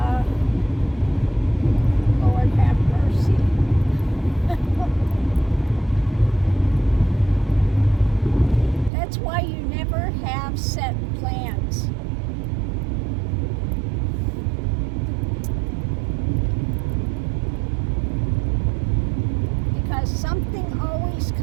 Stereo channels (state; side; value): drops out; left; at 8.9 s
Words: Lord have mercy. That's why you never have set plans. Because something always